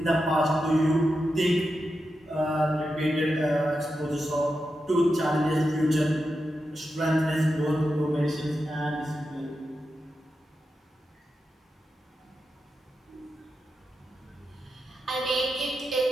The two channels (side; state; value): both; normal; correlation 0.89